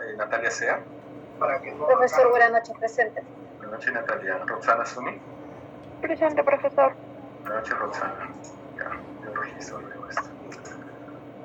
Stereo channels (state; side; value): identical; both; correlation 1.00